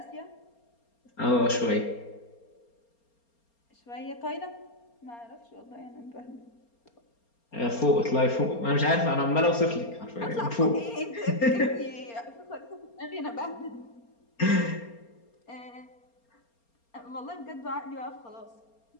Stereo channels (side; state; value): right; late; 4.3 ms